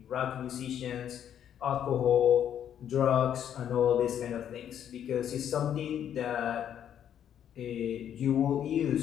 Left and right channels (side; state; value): right; quieter; 9.6 dB